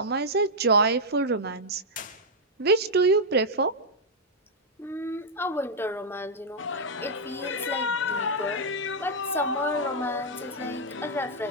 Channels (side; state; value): both; normal; correlation -0.05